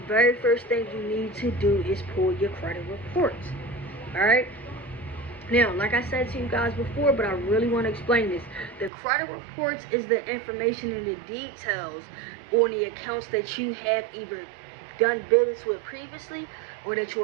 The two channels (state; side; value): drops out; left; at 8.9 s